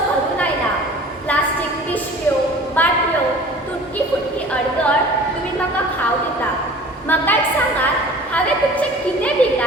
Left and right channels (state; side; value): normal; both; correlation 0.44